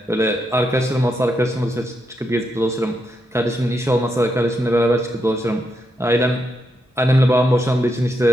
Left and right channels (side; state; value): both; normal; correlation 0.82